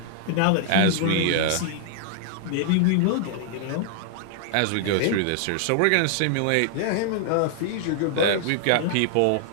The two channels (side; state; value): both; different; correlation 0.00